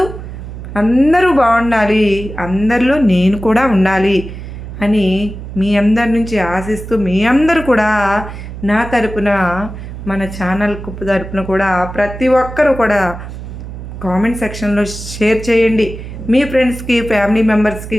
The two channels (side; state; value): right; noise; hum, 11 dB below the sound